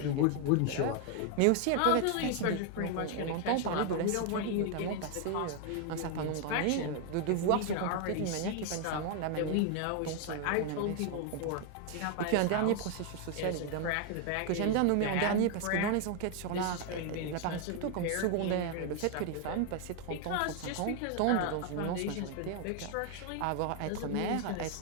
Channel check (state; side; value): different; both; correlation 0.01